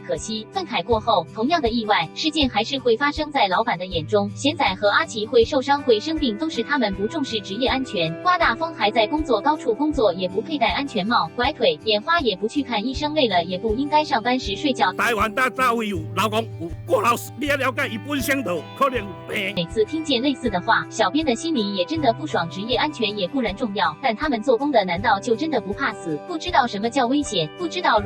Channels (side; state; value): both; identical; correlation 1.00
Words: 惜，愤慨过后，同样的意外事件还是会发生在老板的眼中。贤仔和阿奇会受伤会生病，都是他们不重视职业安全。刮大风还在工作高处工作，也不佩戴安全帽，拐腿眼花也不去看医生，累了也不应该上班时睡觉。台湾大早有老公有过劳死，你要了解伊本身就可能有病。每次听见类似的话，小编的心里也真的不爽。职业安全也固然重要，但他们做工的难道就真的不怕死？不知道什么叫危险，不知道